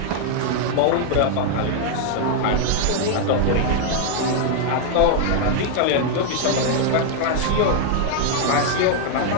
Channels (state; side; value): different; both; correlation 0.00